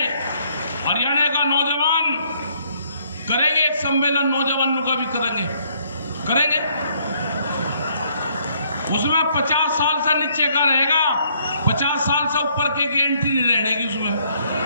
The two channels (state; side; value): inverted; both; correlation -0.67